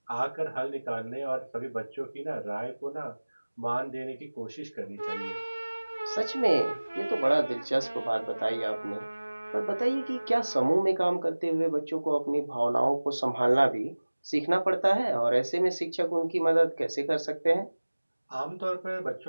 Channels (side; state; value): both; inverted; correlation -1.00